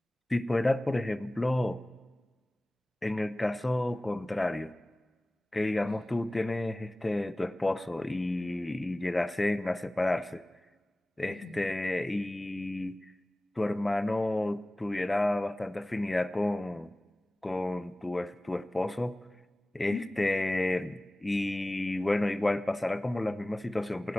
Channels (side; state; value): both; normal; correlation 0.98